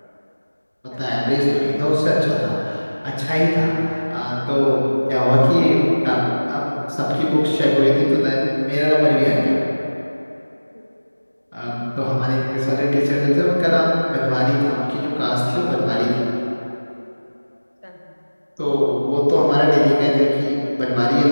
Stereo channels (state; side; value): inverted; both; correlation -1.00